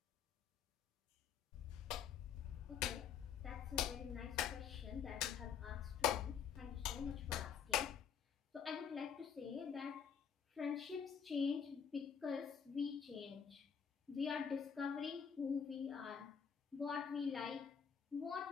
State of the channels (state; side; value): quieter; right; 7.4 dB